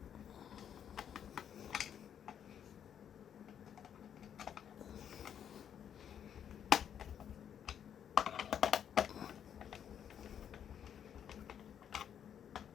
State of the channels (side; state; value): right; quieter; 8.9 dB